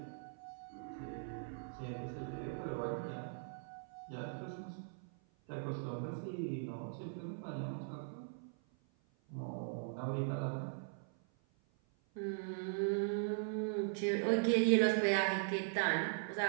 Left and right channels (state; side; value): silent; left; 51 dB below the other